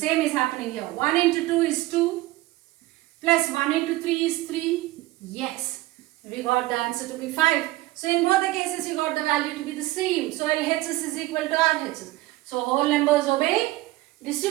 is happening here. 1 into 2 is 2. Plus 1 into 3 is 3. Yes. We got the answer to be 5. So in both the cases, you got the value to be the same. So LHS is equal to RHS. So whole numbers obey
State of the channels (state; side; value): quieter; left; 18.3 dB